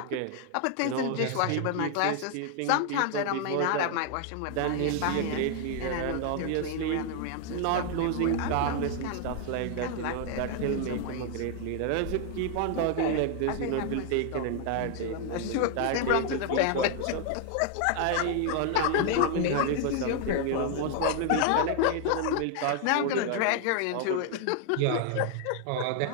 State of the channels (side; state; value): both; different; correlation 0.00